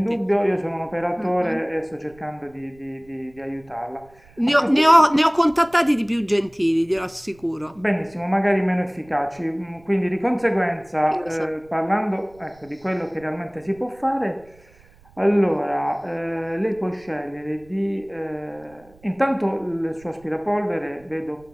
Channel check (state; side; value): noise; right; rumble, 27 dB below the sound